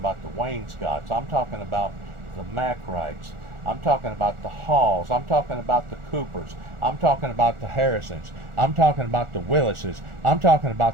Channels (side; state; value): left; late; 1.4 ms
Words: the Wainscots. I'm talking about the Mackrights. I'm talking about the Halls. I'm talking about the Coopers. I'm talking about the Harrisons. I'm talking about the Willises. I'm talking